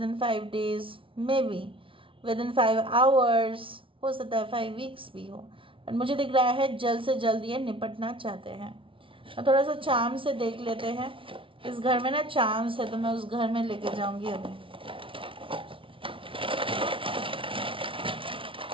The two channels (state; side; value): late; left; 0.25 ms